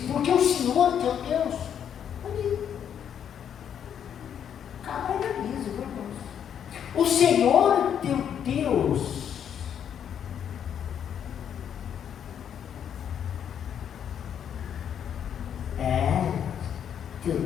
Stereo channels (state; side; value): quieter; right; 8.8 dB